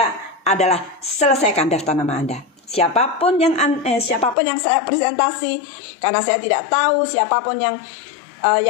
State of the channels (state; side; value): drops out; right; at 4.4 s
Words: adalah selesaikan daftar nama Anda. Siapapun yang saya presentasi, karena saya tidak tahu siapapun yang